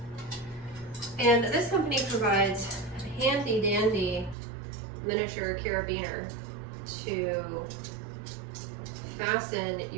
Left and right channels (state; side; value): drops out; left; at 4.4 s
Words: And this company provides a handy dandy miniature carabiner to fasten